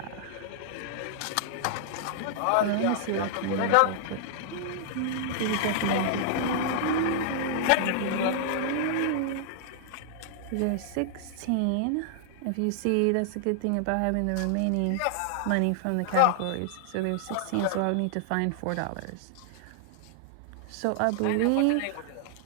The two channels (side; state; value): both; different; correlation -0.01